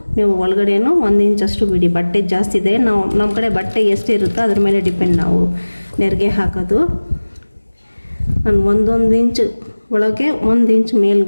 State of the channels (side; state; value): both; inverted; correlation -1.00